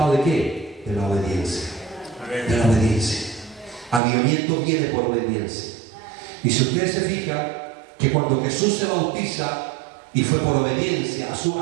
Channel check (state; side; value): drops out; left; at 4.0 s